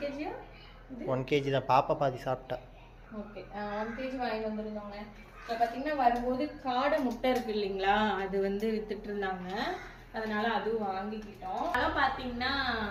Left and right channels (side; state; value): both; identical; correlation 1.00